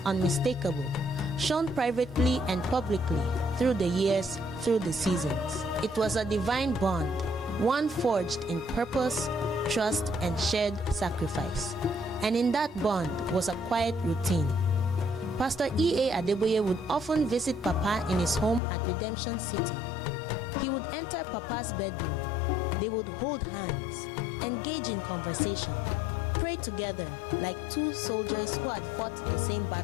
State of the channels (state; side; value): drops out; right; at 18.6 s